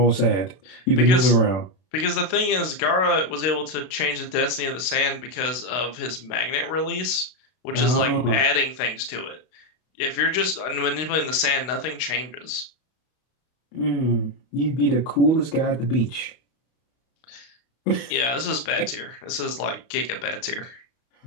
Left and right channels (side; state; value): right; late; 32 ms